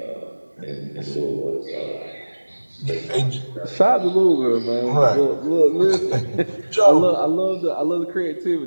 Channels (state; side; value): inverted; both; correlation -1.00